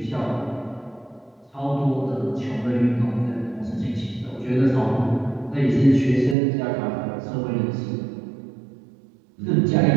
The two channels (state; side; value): drops out; left; at 6.4 s